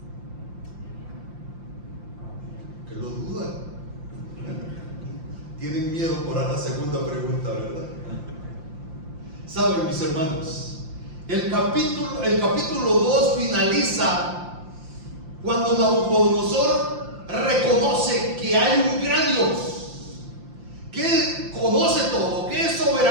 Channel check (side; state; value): left; late; 5.8 ms